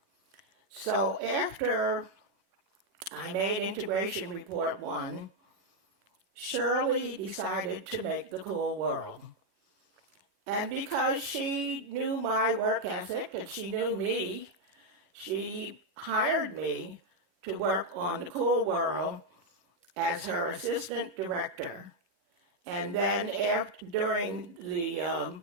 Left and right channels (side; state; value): left; late; 11 ms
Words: So after I made Integration Report 1, Shirley decided to make The Cool World. And because she knew my work ethic and she knew me, she hired me to work on The Cool World as her assistant director. And then during the